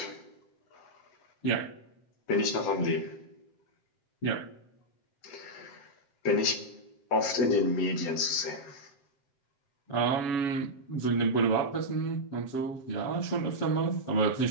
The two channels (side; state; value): right; late; 7.7 ms